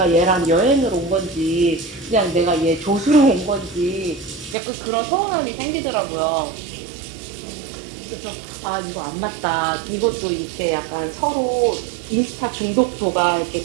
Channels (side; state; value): left; drops out; at 4.5 s